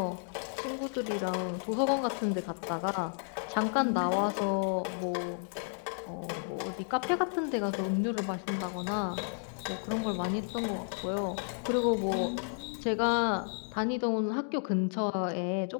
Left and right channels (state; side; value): silent; right; 56 dB below the other